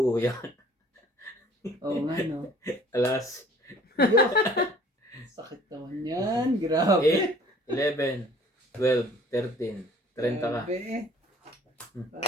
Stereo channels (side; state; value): both; normal; correlation 0.53